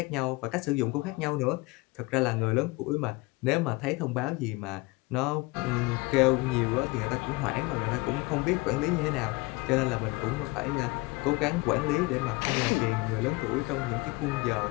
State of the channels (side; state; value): right; quieter; 24.1 dB